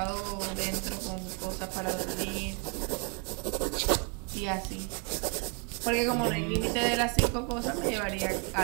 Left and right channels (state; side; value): quieter; left; 36.4 dB